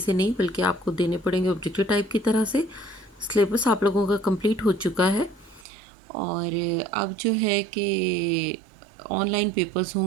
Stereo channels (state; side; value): drops out; left; at 5.7 s